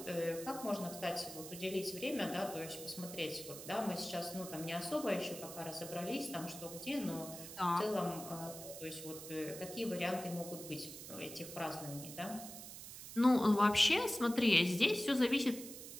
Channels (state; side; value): noise; right; hiss, 11 dB below the sound